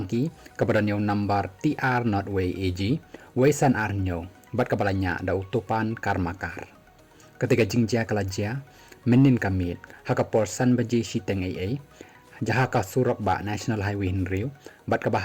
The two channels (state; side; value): identical; both; correlation 1.00